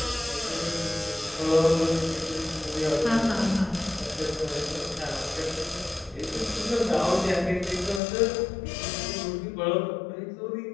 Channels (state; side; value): drops out; right; at 8.0 s